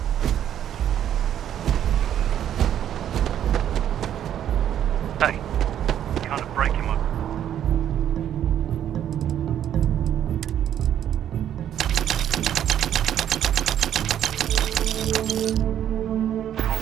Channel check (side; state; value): left; quieter; 10.4 dB